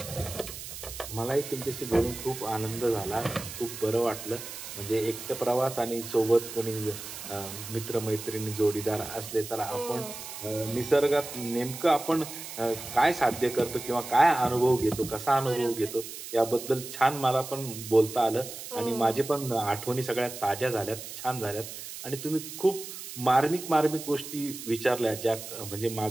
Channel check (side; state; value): right; noise; hiss, 10 dB below the sound